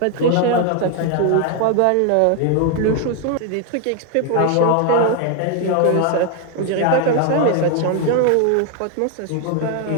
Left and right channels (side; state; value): both; different; correlation 0.01